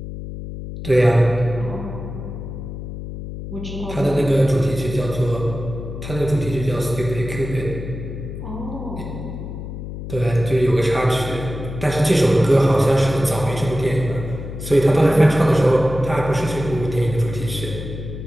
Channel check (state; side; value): noise; left; hum, 9 dB below the sound